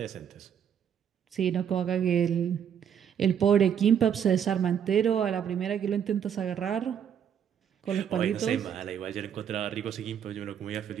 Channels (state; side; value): quieter; left; 8.5 dB